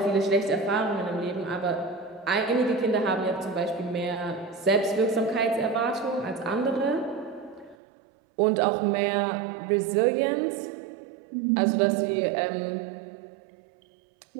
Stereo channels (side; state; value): left; drops out; at 7.8 s